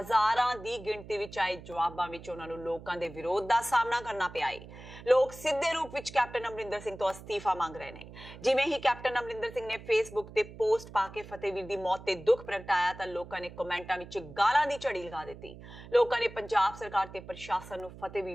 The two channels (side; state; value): right; noise; hum, 16 dB below the sound